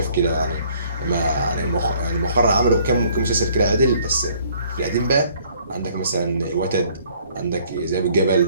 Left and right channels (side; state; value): both; inverted; correlation -0.60